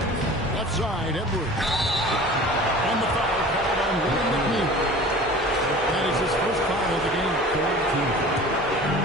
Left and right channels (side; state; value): both; normal; correlation 0.41